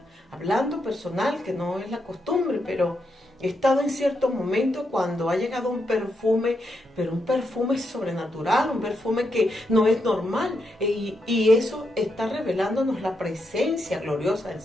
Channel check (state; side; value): normal; both; correlation 0.82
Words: hablando personal, que no es la costumbre, pero he estado en ciertos momentos cuando ha llegado un perfume, pero un perfume sobrenatural, un perfume que no es normal. Y eso está revelándonos la presencia gloriosa del